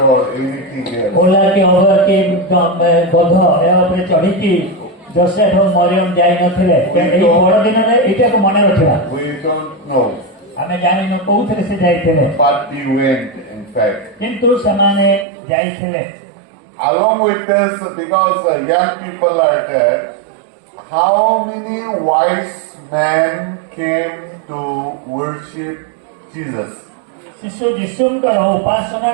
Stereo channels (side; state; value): left; drops out; at 15.2 s